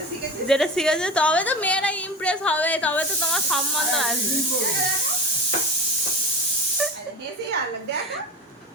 যেটা শিখেছে তবে তো মেয়েরা ইমপ্রেস হবে, তবে তো তোমার সম্বন্ধ আসবে।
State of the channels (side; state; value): both; normal; correlation 0.30